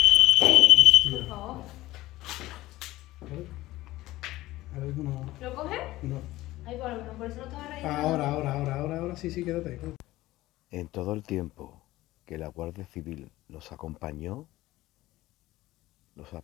Por favor. A ver, no. ¿Lo coges? No. Ahí por lo menos, por eso no estaba reído. Ahora, sí, quédate. En todo el tiempo que la Guardia Civil nos acompañó, los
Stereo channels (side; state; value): right; quieter; 17.2 dB